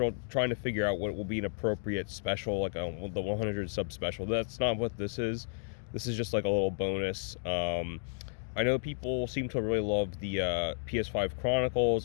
to figure out what will be an appropriate special, like the 100 sub special. That's not what this is. This is just like a little bonus. I know people seem to really love the PS5 Chronicles.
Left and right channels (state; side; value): silent; right; digital silence